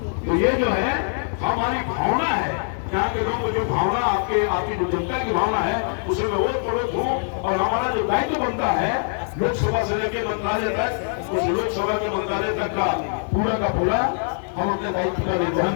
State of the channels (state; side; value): silent; right; digital silence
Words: तो ये जो है हमारी भावना है, यहाँ के लोगों को जो भावना आपकी जो जनता की भावना है उसे मैं और पड़ोस हूँ। और हमारा जो दायित्व बनता है लोकसभा से लेकर मंत्रालय तक, उस लोकसभा के मंत्रालय तक का पूरा हम अपने दायित्व का निर्वहन